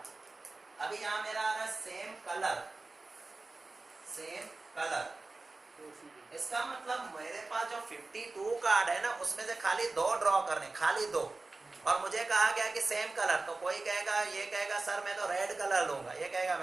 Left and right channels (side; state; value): left; quieter; 3.4 dB